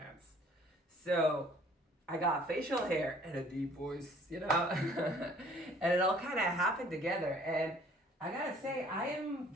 So I got facial hair and a deep voice, and it all kind of happened together. And I gotta say, I am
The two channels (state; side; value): normal; both; correlation 0.56